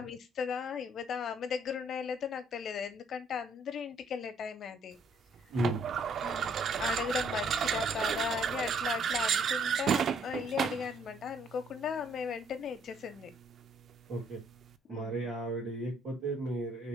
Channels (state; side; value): normal; both; correlation 0.65